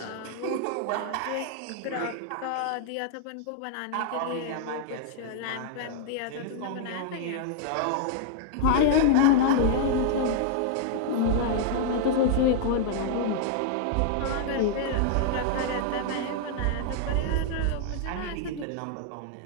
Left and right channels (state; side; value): different; both; correlation -0.01